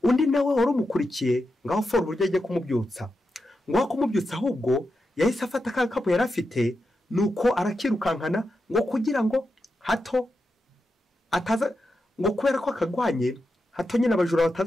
Undi nawe wari umukurikiye ngaho fora uburyo agiye kumubyutsa, ngo kumubyutsa ahubwo yahise afata ka gakapu yari afite, nuko arakirukankana ngo kugira ngo hato ataza, ngo kubera ko akagwanye hato nyine abajura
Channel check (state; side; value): normal; both; correlation 0.88